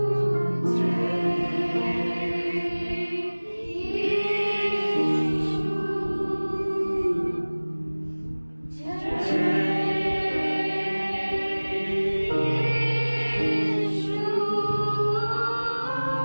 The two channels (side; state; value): both; inverted; correlation -1.00